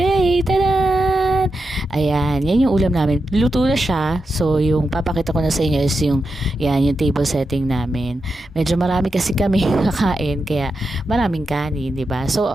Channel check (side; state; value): both; normal; correlation 0.88